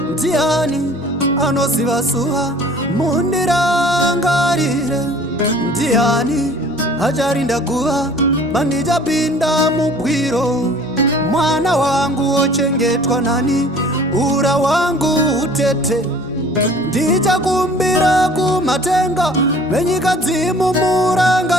Ndiani anoziva zuva? Mundirangarire. Ndiani acharinda guva pandichapinda mugwiro? Mwana wangu ochengetwa nani? Ura wangu utete. Ndichakumbira kumatenga venyika dzimu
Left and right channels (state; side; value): noise; right; hum, 29 dB below the sound